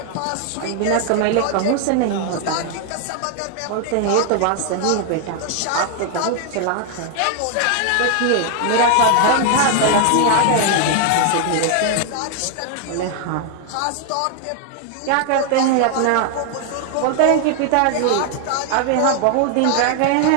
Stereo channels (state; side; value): different; both; correlation 0.00